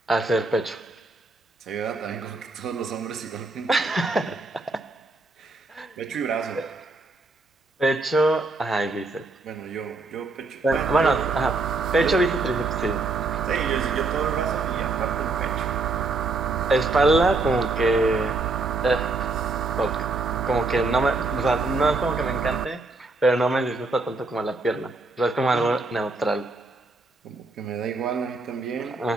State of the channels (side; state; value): left; quieter; 3.4 dB